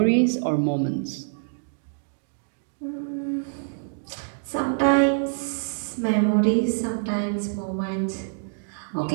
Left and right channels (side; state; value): left; silent; digital silence